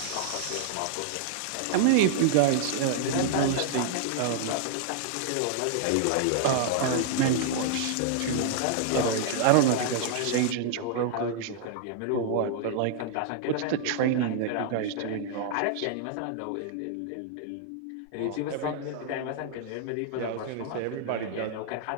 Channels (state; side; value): different; both; correlation -0.01